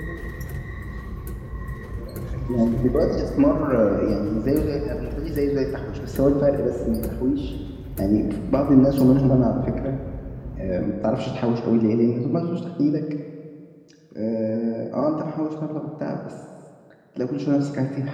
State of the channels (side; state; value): both; identical; correlation 1.00